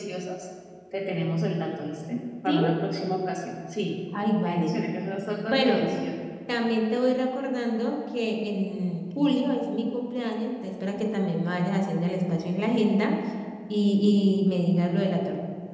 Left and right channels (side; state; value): both; identical; correlation 1.00